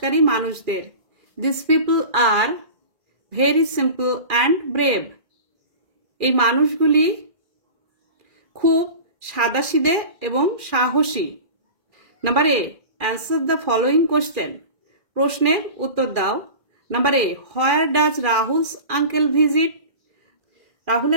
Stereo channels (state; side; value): late; left; 2.4 ms